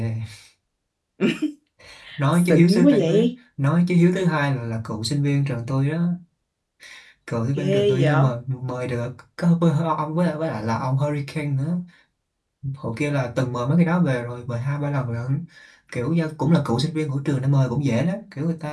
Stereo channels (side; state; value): both; identical; correlation 1.00